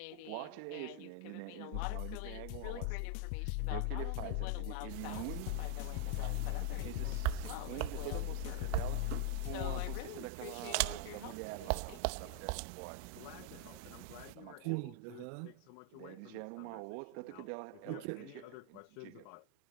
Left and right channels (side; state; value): both; different; correlation 0.00